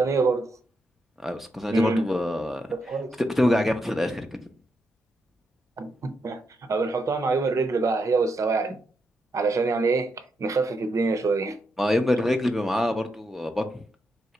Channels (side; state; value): both; normal; correlation 0.82